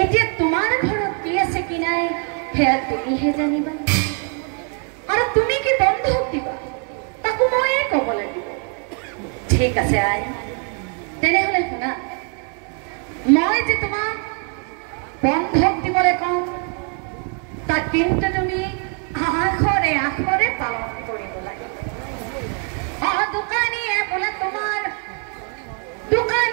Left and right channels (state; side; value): quieter; left; 39.2 dB